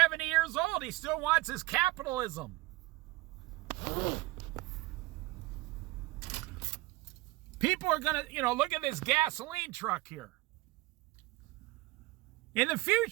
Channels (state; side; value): quieter; left; 19.9 dB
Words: years old, he still wants his capitalism. People are going to, look at this gasoline truck here. In the